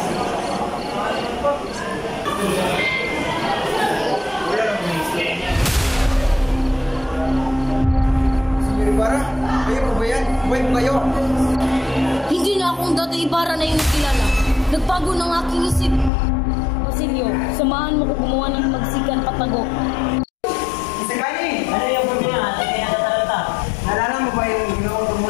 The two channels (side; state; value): right; drops out; at 16.1 s